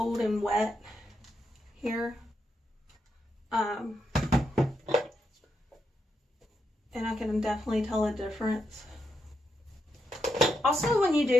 and wet here. And I can definitely tell a difference. Also, when you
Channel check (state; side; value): normal; both; correlation 0.83